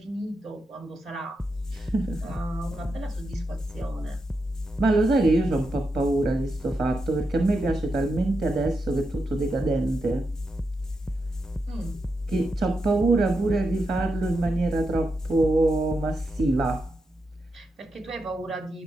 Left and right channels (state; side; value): normal; both; correlation 0.86